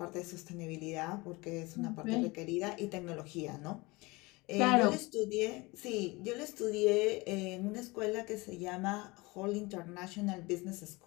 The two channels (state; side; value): quieter; right; 23.8 dB